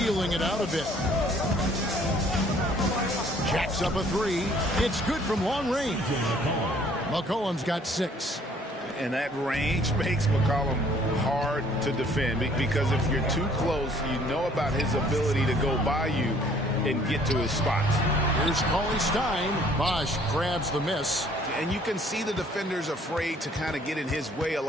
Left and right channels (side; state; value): both; normal; correlation 0.59